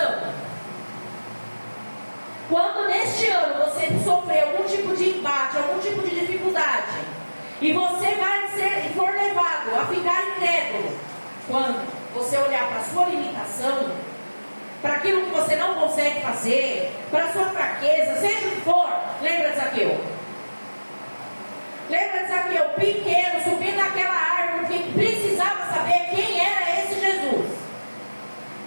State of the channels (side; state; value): both; inverted; correlation -1.00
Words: Quando neste ano você sofrer algum tipo de embate, algum tipo de dificuldade, e você for levado a ficar incrédulo, quando você olhar para a sua limitação, para aquilo que você não consegue fazer, para a sua fraqueza, seja o que for, lembra de Zaqueu? Lembra de Zaqueu, pequeno, subindo naquela árvore, que precisava saber quem era esse Jesus.